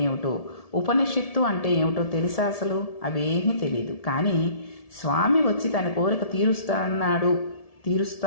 ఏమిటో, ఉపనిషత్తు అంటే ఏమిటో తెలుసా? అసలు అవేమీ తెలియదు. కానీ స్వామి వచ్చి తన కోరిక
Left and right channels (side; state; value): right; late; 1.7 ms